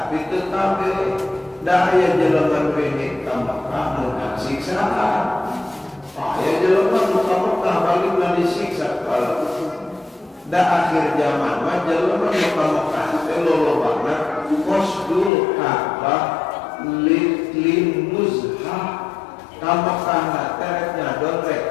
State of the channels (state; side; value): drops out; right; at 15.3 s